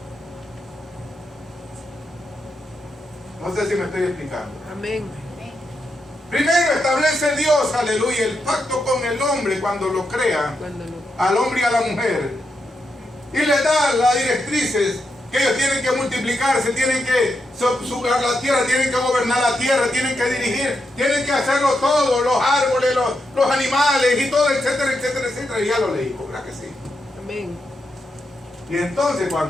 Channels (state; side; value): normal; both; correlation 0.84